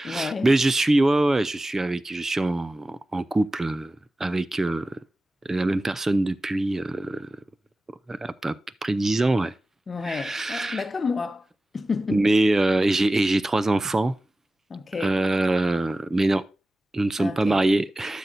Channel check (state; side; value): normal; both; correlation 0.96